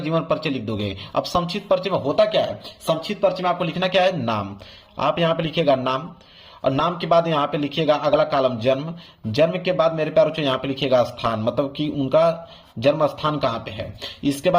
जीवन परिचय लिख दोगे। अब संक्षिप्त परिचय में होता क्या है, संक्षिप्त परिचय में आपको लिखना क्या है, नाम। आप यहाँ पे लिखिएगा नाम, और नाम के बाद यहाँ पे लिखिएगा अगला कॉलम जन्म। जन्म के बाद मेरे प्यारे बच्चों यहाँ पे लिखिएगा स्थान, मतलब कि उनका जन्म स्थान कहाँ पे है। इसके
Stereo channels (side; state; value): both; identical; correlation 1.00